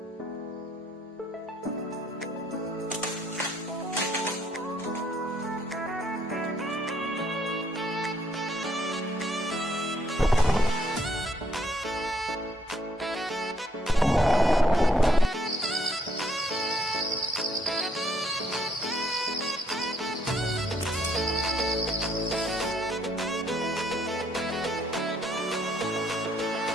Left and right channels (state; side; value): normal; both; correlation 0.69